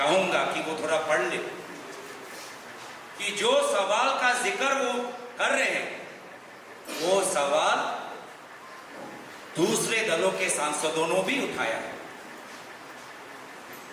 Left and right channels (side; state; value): both; identical; correlation 1.00